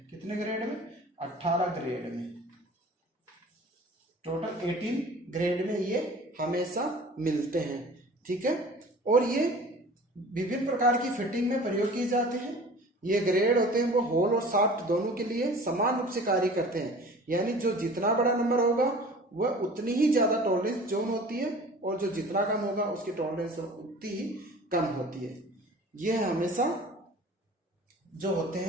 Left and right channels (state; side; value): normal; both; correlation 0.43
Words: कितने ग्रेड में? 18 ग्रेड में। टोटल 18 ग्रेड में ये हमेशा मिलते हैं। ठीक है, और ये विभिन्न प्रकार की फिटिंग में प्रयोग किए जाते हैं। ये ग्रेड होते हैं वो होल और शाफ्ट दोनों के लिए समान रूप से कार्य करते हैं। यानी जो जितना बड़ा नंबर होगा वह उतनी ही ज्यादा टॉलरेंस जोन होती है, और जो जितना कम होगा उसकी टॉलरेंस उतनी ही कम होती है। ये हमेशा जो होते